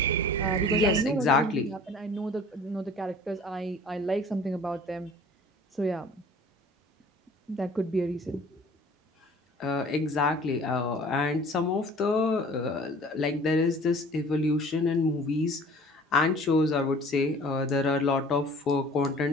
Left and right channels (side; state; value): both; normal; correlation 0.48